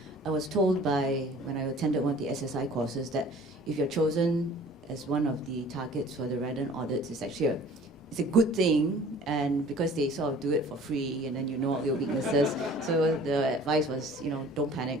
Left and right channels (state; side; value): normal; both; correlation 0.49